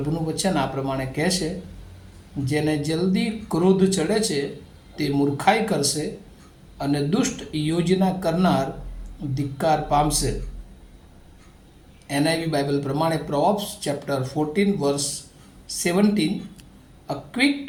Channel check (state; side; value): identical; both; correlation 1.00